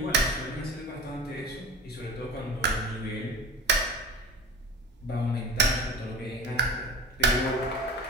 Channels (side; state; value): both; normal; correlation 0.37